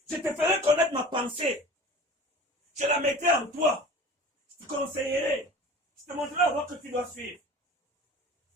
Je te ferai connaître ma pensée. Je la mettrai en toi. Je te conseillerai. Je te montrerai la voie que tu dois suivre.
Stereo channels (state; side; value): normal; both; correlation 0.40